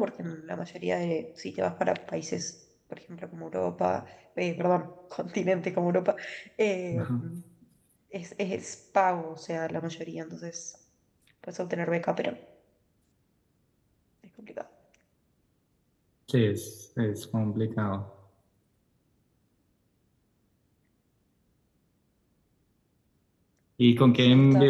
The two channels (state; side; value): identical; both; correlation 1.00